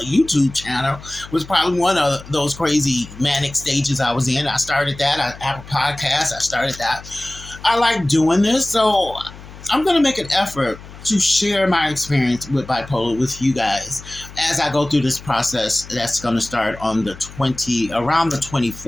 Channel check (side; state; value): left; noise; hum, 17 dB below the sound